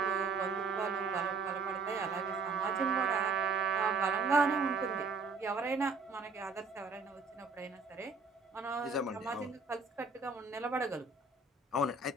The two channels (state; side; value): quieter; left; 4.2 dB